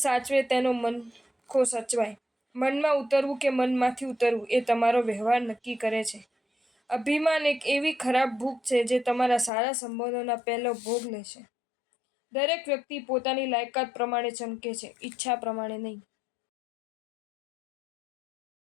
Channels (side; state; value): right; drops out; at 9.5 s